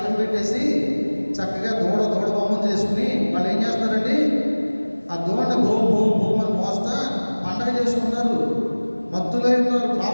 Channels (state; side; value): inverted; both; correlation -1.00